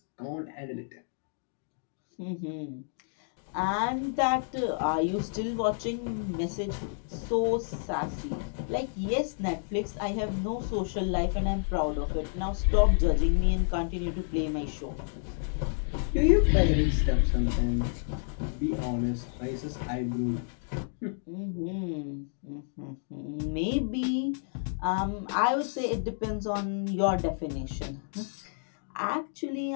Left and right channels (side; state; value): right; silent; digital silence